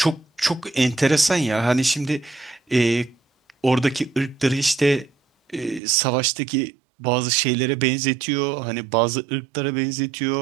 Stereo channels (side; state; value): left; drops out; at 5.8 s